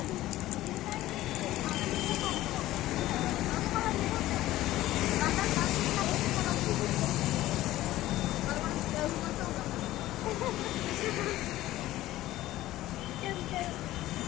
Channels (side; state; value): right; quieter; 15.6 dB